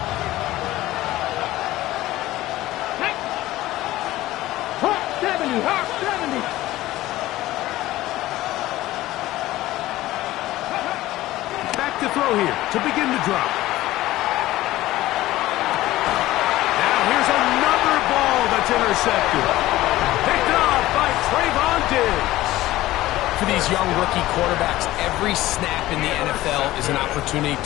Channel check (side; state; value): right; quieter; 16.3 dB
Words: To throw here to begin the drop. Now here's another ball that's intercepted. Picked off by Trayvon Diggs. For these young rookie quarterbacks, every snap in the NFL is an opportunity